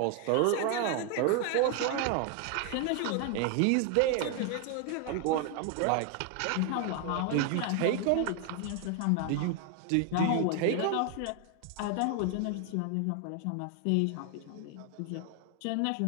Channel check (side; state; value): both; different; correlation 0.01